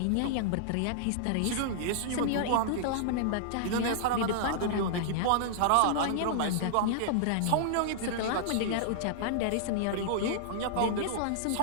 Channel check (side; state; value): both; different; correlation -0.01